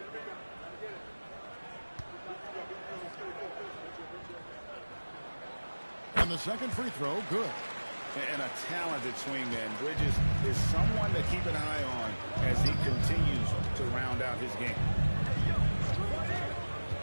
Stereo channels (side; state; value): both; inverted; correlation -1.00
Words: And the second free throw, good. And a talented swingman. Bridges is someone to keep an eye on as he continues to round out his game.